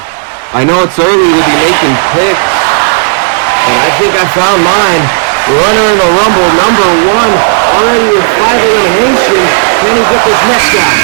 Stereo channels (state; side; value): silent; left; digital silence